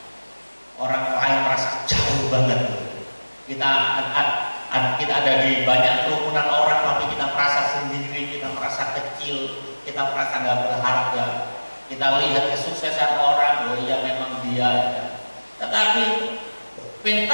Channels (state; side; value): inverted; both; correlation -1.00